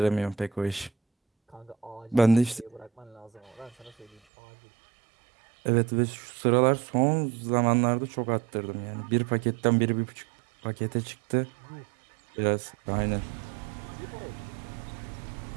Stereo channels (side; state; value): left; drops out; at 4.2 s